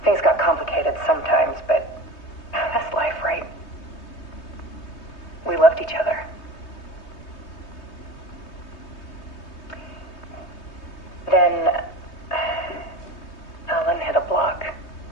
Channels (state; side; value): late; right; 3.2 ms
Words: Things got complicated sometimes, but each other. Then Alan hit a block.